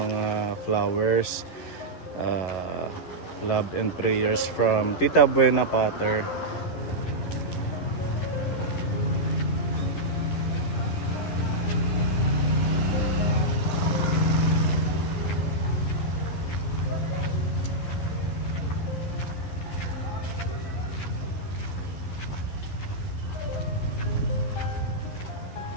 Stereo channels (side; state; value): right; late; 11 ms